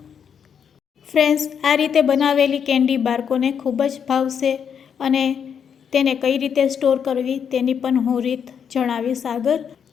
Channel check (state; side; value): quieter; right; 7.5 dB